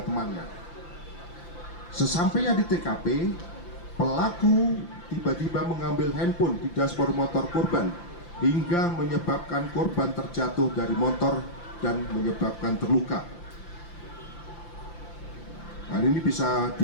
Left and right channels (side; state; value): right; late; 5.8 ms